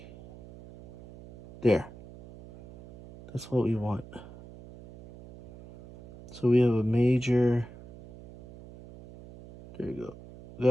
There. That's what we want. So we have a major. There you go.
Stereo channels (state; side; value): noise; right; hum, 18 dB below the sound